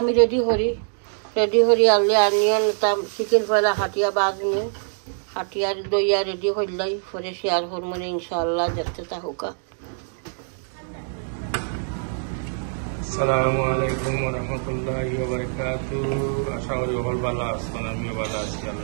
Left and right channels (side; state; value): left; silent; digital silence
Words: রেডি করি আনলে আনিয়ন চিকেন পয়লা হাটিয়া বাজমু, হাটিয়ার দইয়া রেডি করলাই পরে শেয়ার করবো ইনশাআল্লাহ। দেখতে থাকুকা। আসসালামু আলাইকুম ওয়া রাহমাতুল্লাহি ওয়া বারাকাতুহু। আশা করি সকল ভালো আছেন, আমিও ভালো আছি